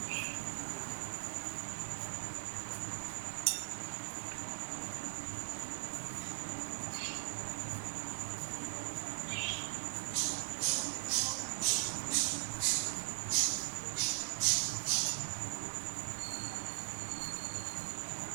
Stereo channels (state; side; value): silent; left; digital silence